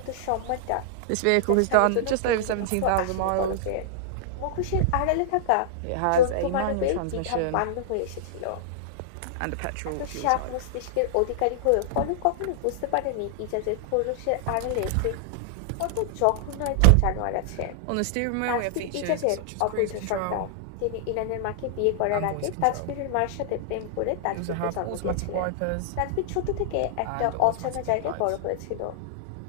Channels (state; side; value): different; both; correlation -0.01